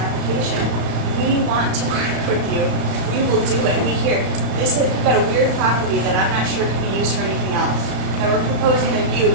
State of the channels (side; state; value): left; late; 35 ms